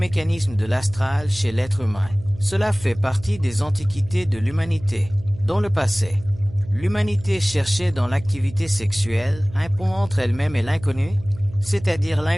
de l'astral chez l'être humain. Cela fait partie des antiquités de l'humanité. Dans le passé, l'humanité cherchait dans l'activité sexuelle un pont entre elle-même et l'inconnu, c'est-à-dire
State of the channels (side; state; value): right; noise; hum, 17 dB below the sound